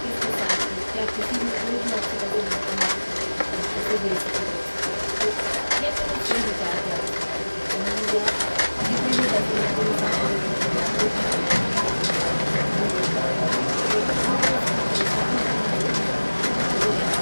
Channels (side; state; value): both; inverted; correlation -1.00